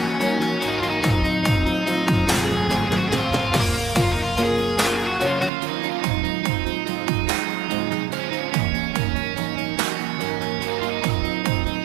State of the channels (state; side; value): drops out; left; at 5.5 s